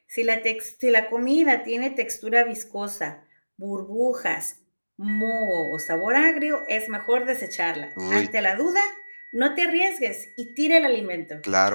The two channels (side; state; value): both; inverted; correlation -1.00